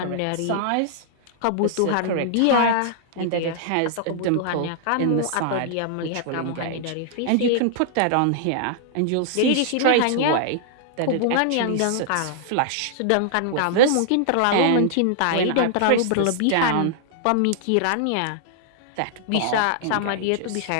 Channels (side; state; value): both; different; correlation -0.01